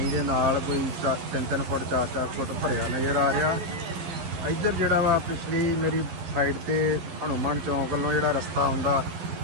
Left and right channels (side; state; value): left; late; 11 ms